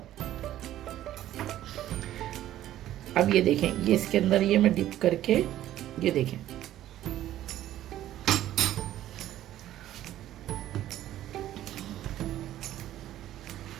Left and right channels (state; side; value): quieter; left; 13.0 dB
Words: अब ये देखें, ये इसके अंदर ये मैं डिप करके, ये देखें,